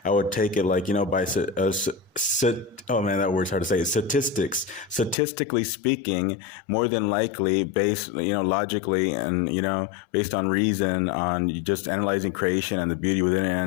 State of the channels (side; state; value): right; drops out; at 5.2 s